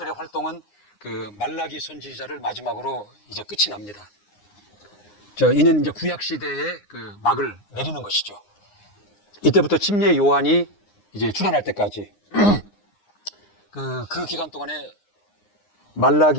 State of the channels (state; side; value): late; right; 9.7 ms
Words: 활동은 그 말라기 선지자를 마지막으로 이제 끝이 납니다. 이는 이제 구약 시대의 그 막을 내리는 것이죠. 이때부터 침례 요한이 이제 출현할 때까지 그 기간 동안에